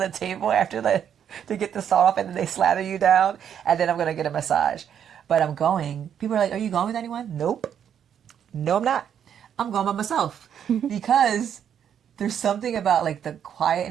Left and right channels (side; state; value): left; quieter; 8.8 dB